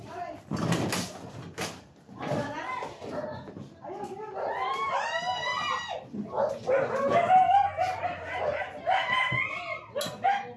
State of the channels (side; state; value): both; identical; correlation 1.00